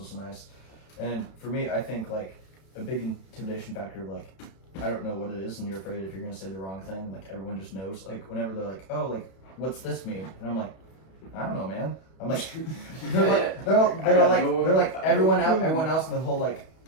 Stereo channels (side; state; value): right; late; 31 ms